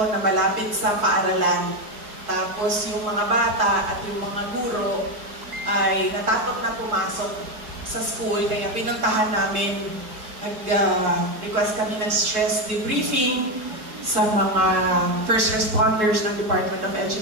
na malapit sa paaralan. Tapos yung mga bata at yung mga guro ay natakot na pumasok sa school, kaya pinuntahan namin, nag-request kami ng stress debriefing sa mga first responders ng Department of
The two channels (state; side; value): late; left; 4.7 ms